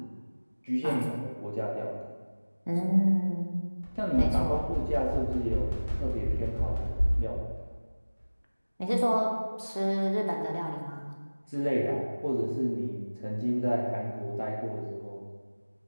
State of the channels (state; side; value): inverted; both; correlation -1.00